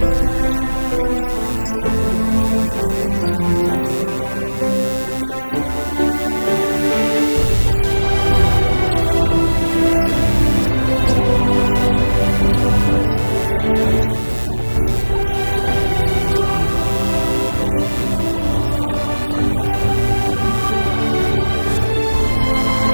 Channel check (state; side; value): inverted; both; correlation -1.00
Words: filmes europeus, sendo o último de 1959, O Terceiro Homem da Montanha. Os corpos de Cross, Haddon e Hudson foram resgatados 4 dias depois e estão sepultados próximos à igreja de Zermatt. Porém, o de Douglas Haddon jamais foi encontrado. O Matterhorn foi o último